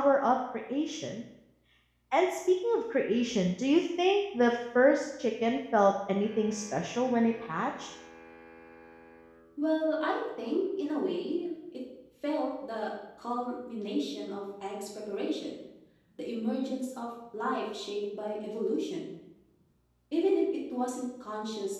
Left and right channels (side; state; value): both; identical; correlation 1.00